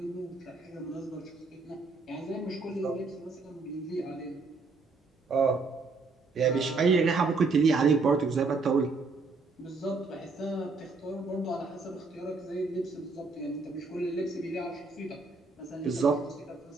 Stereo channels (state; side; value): quieter; left; 3.9 dB